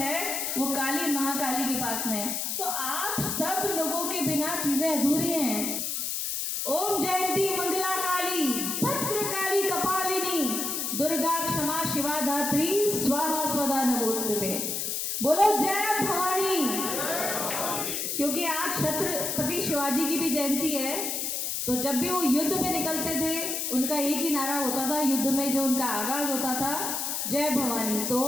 वो काली महाकाली के पास में है। तो आप सब लोगों के बिना चीजें अधूरी हैं। ओम जयंती मंगला काली, भद्र काली कपालिनी, दुर्गा क्षमा शिवा धात्री, स्वाहा स्वदा नमोस्तुते। बोलो जय भवानी। क्योंकि आज छत्रपति शिवाजी की भी जयंती है, तो जब भी वो युद्ध में निकलते थे उनका एक ही नारा होता था, युद्ध में जो उनका आगाज होता था, जय भवानी। तो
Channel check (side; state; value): left; noise; hiss, 1 dB below the sound